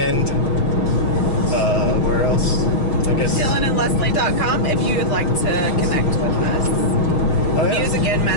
where else? I guess DylanandLeslie.com if you would like to connect with us. Oh, yeah.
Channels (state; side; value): late; right; 6.5 ms